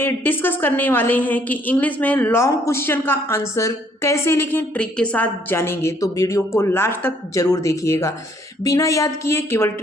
डिस्कस करने वाले हैं कि इंग्लिश में लॉन्ग क्वेश्चन का आंसर कैसे लिखें, ट्रिक के साथ जानेंगे। तो वीडियो को लास्ट तक जरूर देखिएगा। बिना याद किए केवल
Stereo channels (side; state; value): both; normal; correlation 0.65